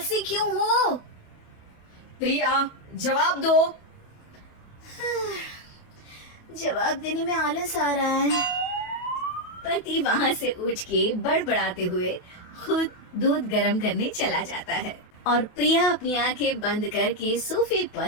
क्यों हो? प्रिया, जवाब दो। जवाब देने में आलस आ रहा है। पति वहाँ से उठ के बड़बड़ाते हुए खुद दूध गर्म करने चला जाता है और प्रिया अपनी आंखें बंद करके सोफे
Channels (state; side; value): late; right; 28 ms